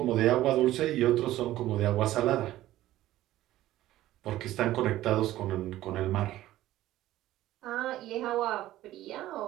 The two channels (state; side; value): quieter; left; 14.8 dB